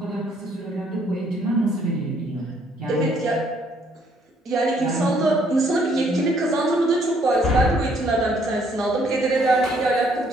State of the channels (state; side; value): normal; both; correlation 0.66